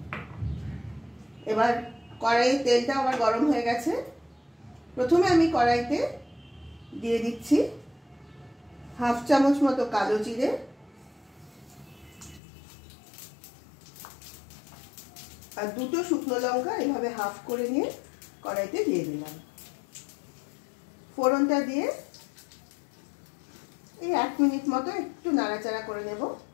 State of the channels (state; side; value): drops out; right; at 12.4 s